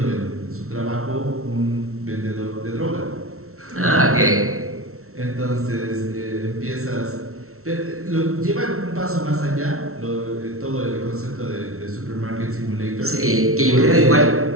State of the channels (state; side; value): late; left; 0.63 ms